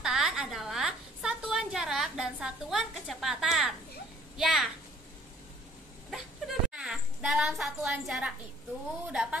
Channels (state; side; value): normal; both; correlation 0.58